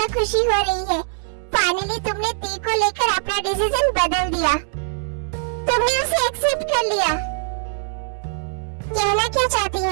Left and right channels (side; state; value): left; silent; digital silence